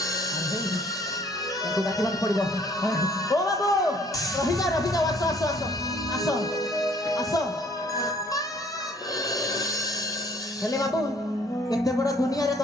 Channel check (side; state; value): both; normal; correlation 0.59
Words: ତାକୁ ଡାକିବାକୁ ପଡିବ। ଓ ବାବୁ, ରହିଯାଅ ରହିଯାଅ, ଆସ ଆସ ଆସ ଆସ ଆସ। ହେଲେ ବାବୁ, ଏତେ ବଡ ଦୁନିଆରେ